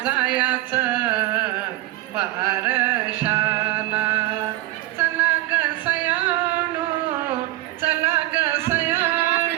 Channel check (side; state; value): left; quieter; 16.9 dB